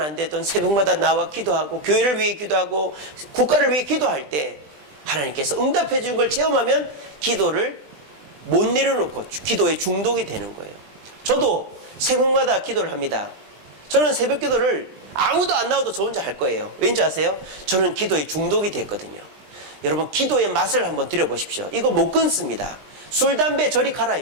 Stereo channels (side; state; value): left; late; 20 ms